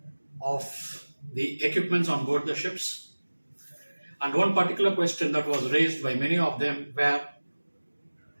of the equipments on board the ships. And one particular question that was raised by many of them were,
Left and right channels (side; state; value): both; inverted; correlation -1.00